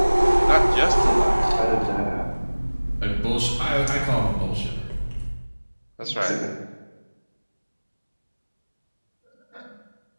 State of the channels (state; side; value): inverted; both; correlation -1.00